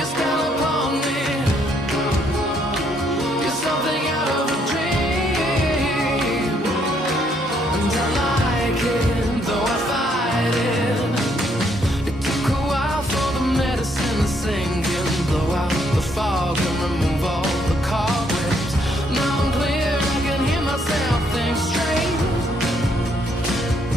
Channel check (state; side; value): normal; both; correlation 0.70